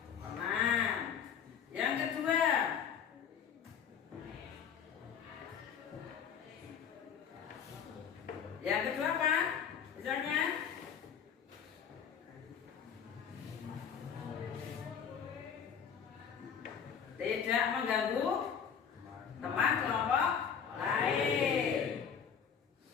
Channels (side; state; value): right; quieter; 7.5 dB